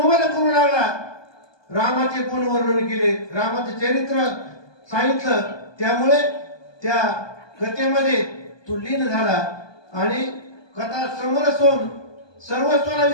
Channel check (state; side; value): late; right; 1.2 ms